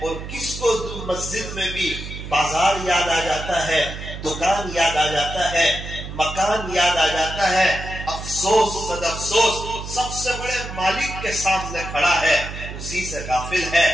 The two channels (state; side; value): noise; right; hum, 9 dB below the sound